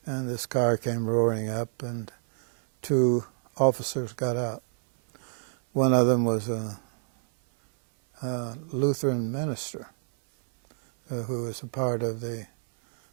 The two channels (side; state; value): left; silent; 59 dB below the other